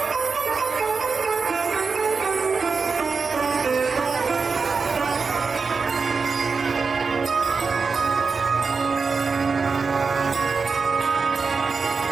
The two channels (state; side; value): quieter; left; 4.8 dB